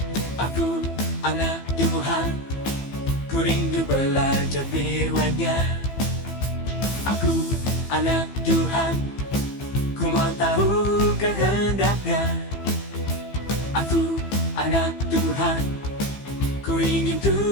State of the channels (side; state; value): right; late; 15 ms